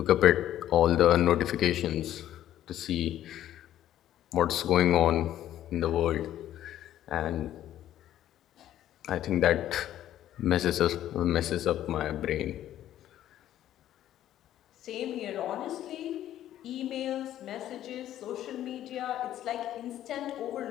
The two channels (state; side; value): quieter; right; 12.2 dB